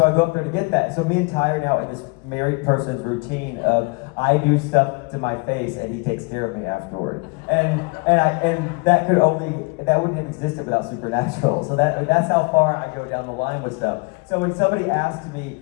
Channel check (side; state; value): right; quieter; 30.1 dB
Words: go up there to get that. So me and Ty are now in this married person's routine of I do stuff to my face and he takes care of me afterward. And that wouldn't have existed without Supernatural. So that's how far I go down the line with stuff. So when somebody asks